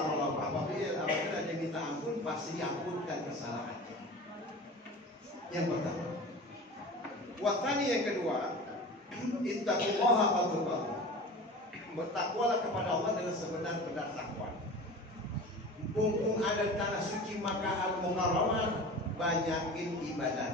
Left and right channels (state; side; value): normal; both; correlation 0.36